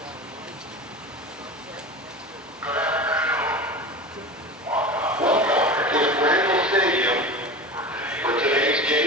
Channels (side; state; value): both; normal; correlation 0.30